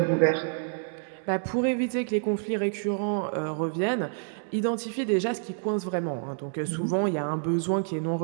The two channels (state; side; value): silent; left; 59 dB below the other